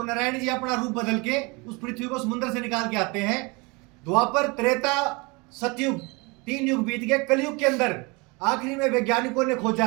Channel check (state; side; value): quieter; left; 27.6 dB